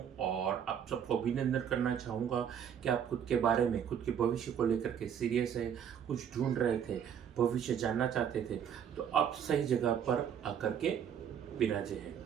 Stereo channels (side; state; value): left; quieter; 8.6 dB